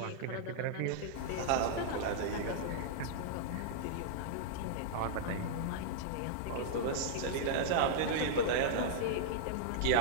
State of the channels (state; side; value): different; both; correlation -0.02